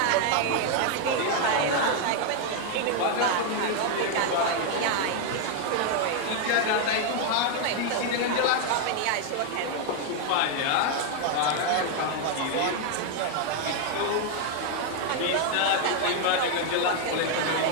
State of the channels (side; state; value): both; different; correlation 0.00